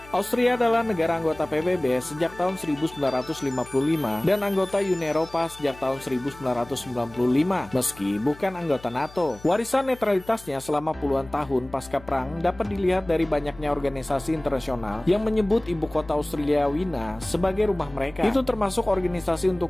Austria adalah negara anggota PBB sejak tahun 1955 dan anggota Uni Eropa sejak tahun 1995, meski bukan anggota NATO. Warisan netralitasnya selama puluhan tahun pasca perang dapat dilihat dari banyaknya organisasi internasional yang menyebut ibu kota Austria Wina sebagai rumah mereka. Itu termasuk Organisasi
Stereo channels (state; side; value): noise; left; hum, 20 dB below the sound